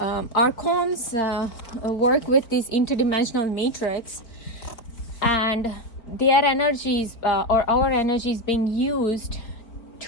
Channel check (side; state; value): right; late; 4.5 ms